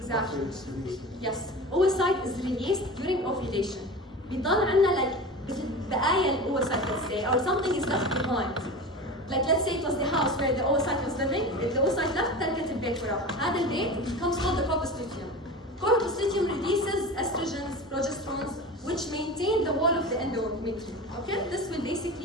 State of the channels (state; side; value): normal; both; correlation 0.31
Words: After it's released. Yes. Oocyte is released during ovulation. بيضل عندنا like بقايا الoocyte, let's say, or something is left behind. Like let's say it was the house where the oocyte was living. If the oocyte left, تركت البيت وراه. هذا البيت becomes called the corpus luteum. Corpus luteum releases estrogens, progesterones, which maintain the wall of the endometrium. Okay? This will